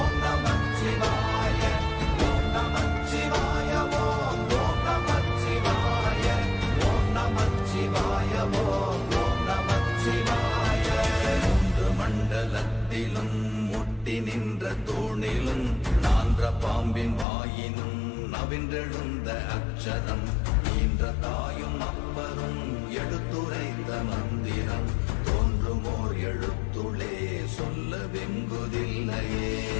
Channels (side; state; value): right; drops out; at 17.2 s